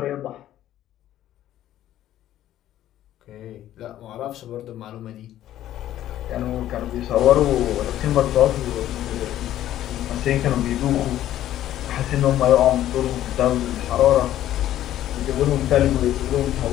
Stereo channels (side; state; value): right; quieter; 12.7 dB